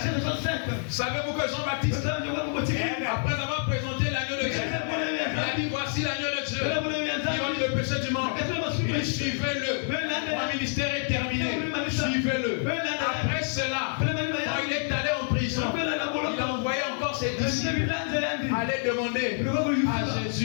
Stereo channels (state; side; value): silent; right; 60 dB below the other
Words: Savez-vous que Jean-Baptiste, après avoir présenté l'agneau de Dieu, il a dit voici l'agneau de Dieu, qui ôte le péché du monde. Il suivez-le. Mon ministère est terminé. Suivez-le. Après cela, quand il est allé en prison, il a envoyé encore ses disciples aller allait demander à